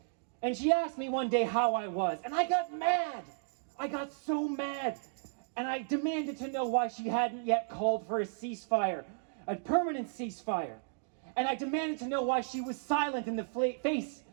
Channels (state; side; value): silent; left; digital silence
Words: And she asked me one day how I was, and I got mad. I got so mad. And I demanded to know why she hadn't yet called for a ceasefire, a permanent ceasefire. And I demanded to know why she was silent in the face